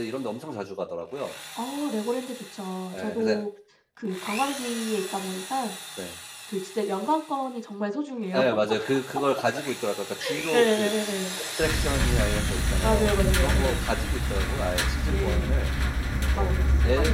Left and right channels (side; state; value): both; identical; correlation 1.00